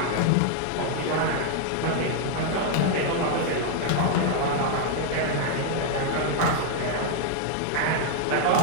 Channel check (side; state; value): both; different; correlation 0.00